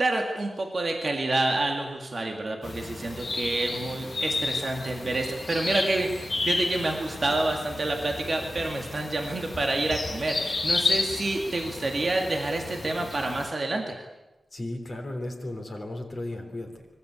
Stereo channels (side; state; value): both; normal; correlation 0.93